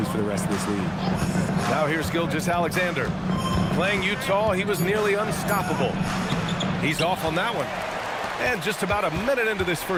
for the rest of this league. Now here's Gilgeous-Alexander. Playing Utah, he was nearly unstoppable. He's off on that one. And just about a minute into this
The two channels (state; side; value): identical; both; correlation 1.00